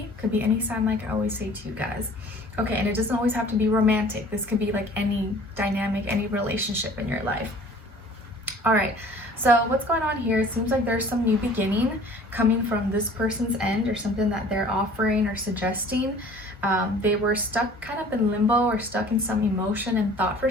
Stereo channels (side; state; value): both; normal; correlation 0.49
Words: could be any sign like I always say to you guys. Okay, and it doesn't always have to be romantic. This could be like any dynamic, any relationship in your life. All right, so what's going on here? It seems like there's some new beginning coming from this person's end, or something that they're offering or suggesting. They were stuck kind of in limbo or stuck in some emotion and thought for